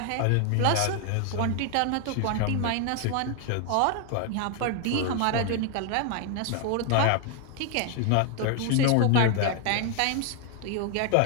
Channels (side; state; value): both; different; correlation 0.00